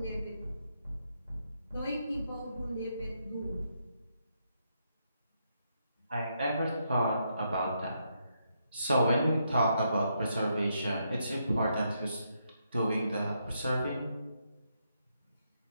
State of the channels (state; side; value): inverted; both; correlation -0.79